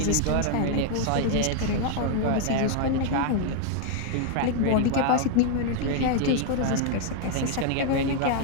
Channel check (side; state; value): both; different; correlation 0.00